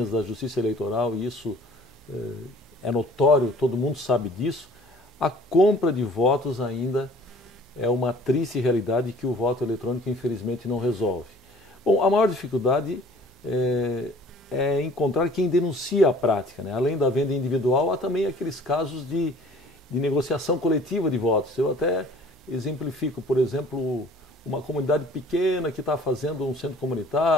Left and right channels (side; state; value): right; noise; hum, 28 dB below the sound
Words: da Justiça Eleitoral, e isso é notório, todo mundo sabe disso, a compra de votos ainda é uma triste realidade que o voto eletrônico, infelizmente, não resolve. Bom, a maior dificuldade é encontrar quem denuncia a prática, né? Além da venda individual, há também aqueles casos de negociação coletiva de votos. Eu até exemplifico, por exemplo, uma comunidade pequena que está fazendo um centro